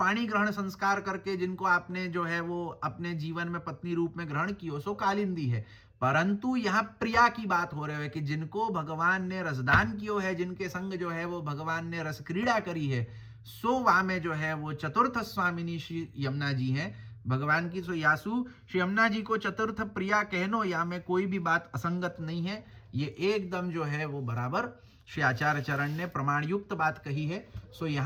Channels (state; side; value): identical; both; correlation 1.00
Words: ग्रहण संस्कार करके जिनको आपने जो है वो अपने जीवन में पत्नी रूप में ग्रहण किया, सो कालिंदी है। परंतु यहाँ प्रिया की बात हो रही है कि जिनको भगवान ने रसदान किया है, जिनके संग जो है वो भगवान ने रस क्रीड़ा करी है, सो वहां में जो है वो चतुर्थ स्वामिनी श्री यमुना जी हैं भगवान की। सो यासु श्री यमुना जी को चतुर्थ प्रिया कहनो या में कोई भी बात असंगत नहीं है। ये एकदम जो है वो बराबर श्री आचार्य चरण ने प्रमाण युक्त बात कही है। सो